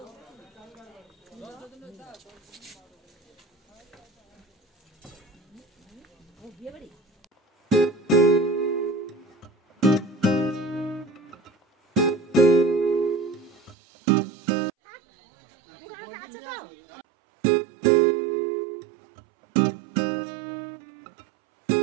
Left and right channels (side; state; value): left; drops out; at 13.8 s